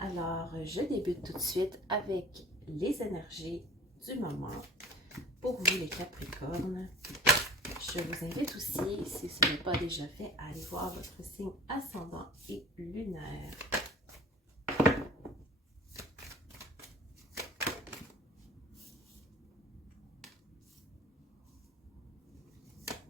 Alors, je débute tout de suite avec les énergies du moment pour vous les Capricornes. Je vous invite aussi, si ce n'est pas déjà fait, à aller voir votre signe ascendant et lunaire.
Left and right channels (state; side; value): normal; both; correlation 0.42